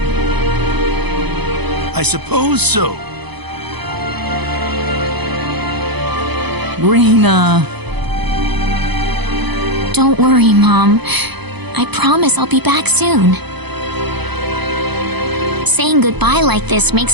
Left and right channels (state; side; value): late; left; 0.99 ms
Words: I suppose so. Raina. Don't worry, Mom. I promise I'll be back soon. Saying goodbye like this